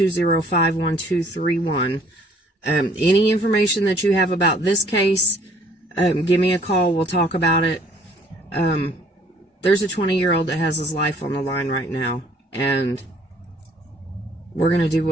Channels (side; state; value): both; normal; correlation 0.59